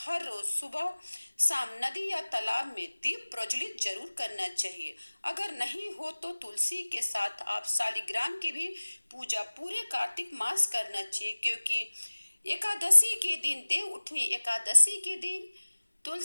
रोज सुबह शाम नदी या तालाब में दीप प्रज्वलित जरूर करना चाहिए। अगर नहीं हो तो तुलसी के साथ आप शालिग्राम की भी पूजा पूरे कार्तिक मास करना चाहिए, क्योंकि एकादशी के दिन, देव उठनी एकादशी के दिन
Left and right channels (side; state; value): both; inverted; correlation -1.00